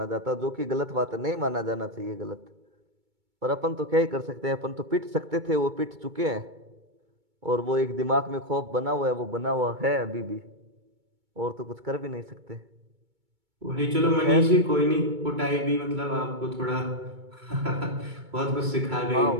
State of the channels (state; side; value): late; left; 2.2 ms